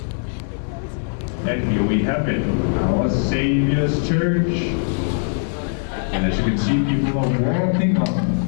And here we have it, our Saviour's Church. And as you can see, people are walking up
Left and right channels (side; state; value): right; silent; digital silence